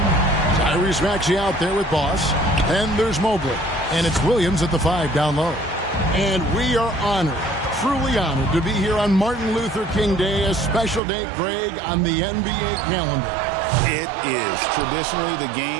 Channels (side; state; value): left; drops out; at 11.0 s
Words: Tyrese Maxey out there with Boss, and there's Mobley, and it's Williams at the 5 down low. And we are honored, truly honored, to be here on Martin Luther King Day, a special day, Greg, on the NBA calendar. It is. Traditionally, the